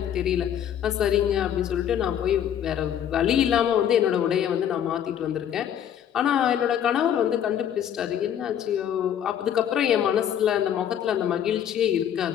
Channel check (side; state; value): right; quieter; 9.6 dB